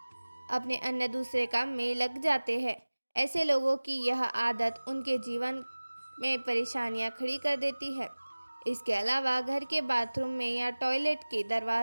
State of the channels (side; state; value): both; inverted; correlation -1.00